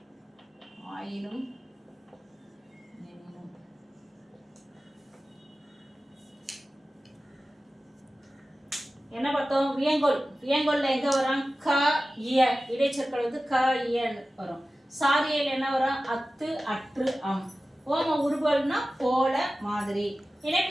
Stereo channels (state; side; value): normal; both; correlation 0.95